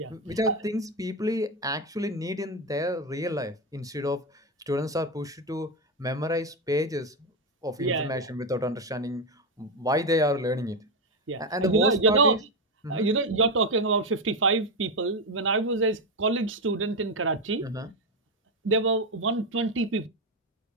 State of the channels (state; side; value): normal; both; correlation 0.09